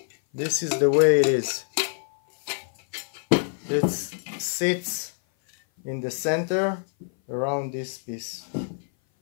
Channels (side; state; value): right; silent; 57 dB below the other